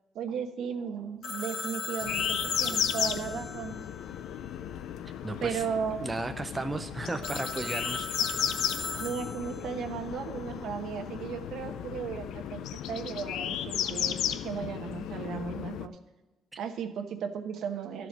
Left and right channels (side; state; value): both; normal; correlation 0.57